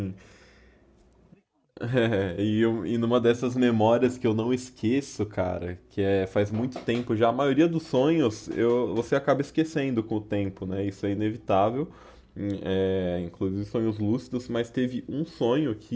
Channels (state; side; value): identical; both; correlation 1.00